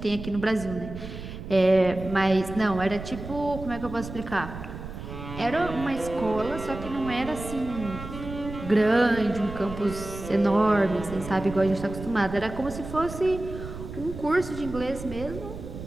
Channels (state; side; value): noise; right; rumble, 10 dB below the sound